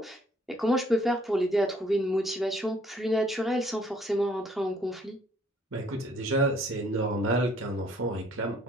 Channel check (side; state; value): both; normal; correlation 0.62